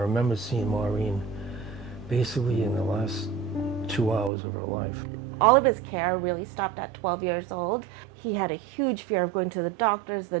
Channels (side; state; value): left; drops out; at 4.3 s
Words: seeing Maureen basically in the last 2 hours of her life. All of his care really stopped at 12 years old. He had a huge fear of going to the doctors, the